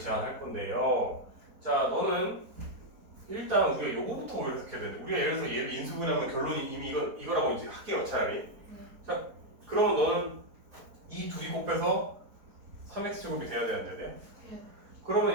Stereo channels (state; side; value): late; left; 4.4 ms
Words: 건데요. 자, 너는 일단 우리가 요거부터 오히려 해석해야 되는데, 우리가 예를 들어서 얘를 인수분해하면 결론이 이미 이거라고 이제 할게요, 차라리. 자, 그러면 너는 이 둘이 곱해서 3x제곱이 돼야 돼, 안 돼야 돼?